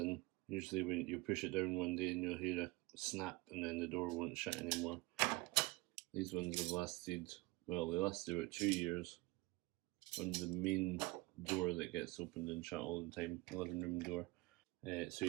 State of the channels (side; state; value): left; quieter; 22.9 dB